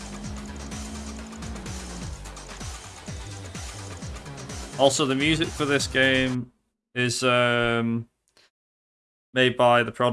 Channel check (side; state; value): both; identical; correlation 1.00